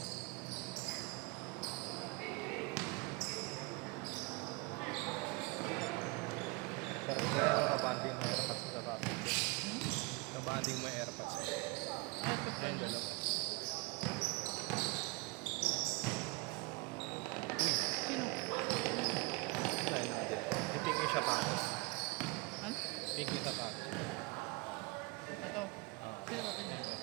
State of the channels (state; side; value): quieter; left; 26.5 dB